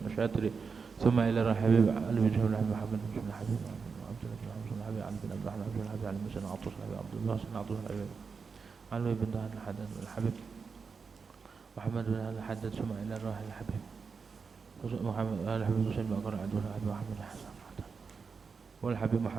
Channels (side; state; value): left; quieter; 5.3 dB